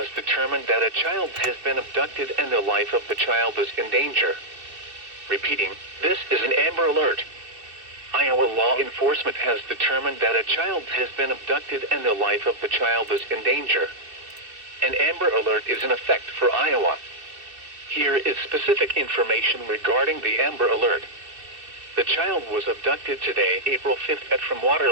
determined that a child has been abducted and the life of the child is in danger. Repeating, this is an Amber Alert. Iowa law enforcement has determined that a child has been abducted and the life of the child is in danger. An Amber Alert is in effect for Iowa. Here is specific information regarding the Amber Alert. The child was abducted today, April 5th from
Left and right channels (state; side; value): late; left; 2.6 ms